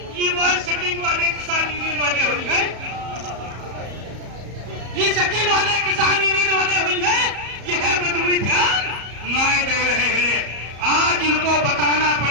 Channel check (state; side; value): late; left; 34 ms